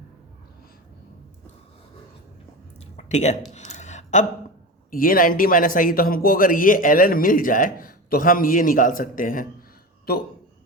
ठीक है। अब ये 90 माइनस आई, तो हमको अगर ये ln मिल जाए तो हम ये निकाल सकते हैं। तो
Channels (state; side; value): normal; both; correlation 0.25